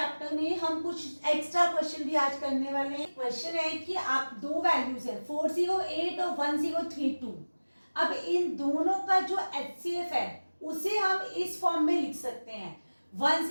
में हम कुछ एक्स्ट्रा क्वेश्चन भी आज करने वाले हैं। क्वेश्चन है कि आप दो वैल्यूज है 408 और 1032, अब इन दोनों का जो HCF है उसे हम इस फॉर्म में लिख सकते हैं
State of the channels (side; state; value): both; inverted; correlation -1.00